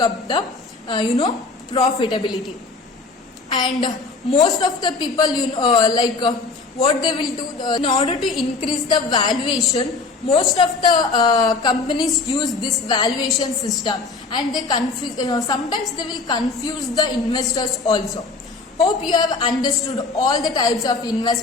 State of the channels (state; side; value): quieter; right; 4.1 dB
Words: up the profitability. And most of the people what they will do in order to increase the valuation, most of the companies use this valuation system, and they sometimes they will confuse the investors also. Hope you have understood all the types of